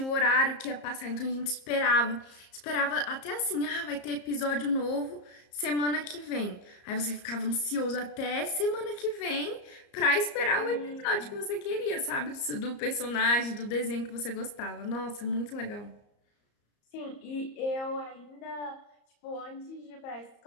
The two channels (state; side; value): late; right; 34 ms